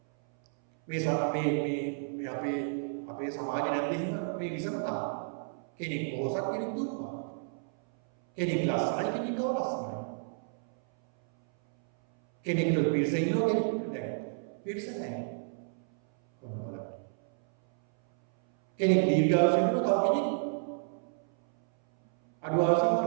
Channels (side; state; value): left; silent; 57 dB below the other